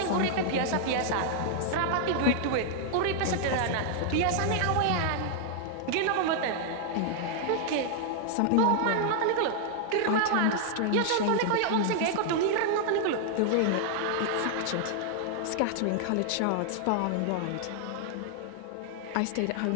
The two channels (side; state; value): both; different; correlation -0.01